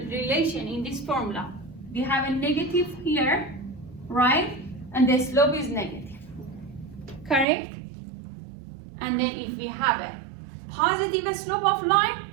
relation in this formula. We have a negative here, right? And the slope is negative. Correct? And then if we have a positive slope of line,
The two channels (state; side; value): drops out; left; at 7.5 s